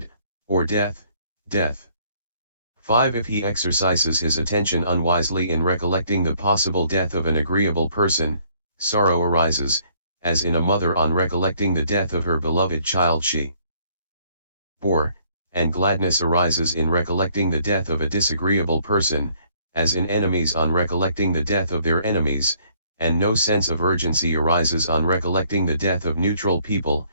or death. 5. If he exercises his attention unwisely in recollecting the possible death of an agreeable person, sorrow arises, as in a mother on recollecting the death of her beloved child she bore, and gladness arises in recollecting the death of a disagreeable person, as in enemies on recollecting the death of their enemies, and no sense of urgency arises on recollecting the death of neutral people,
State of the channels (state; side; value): inverted; both; correlation -0.64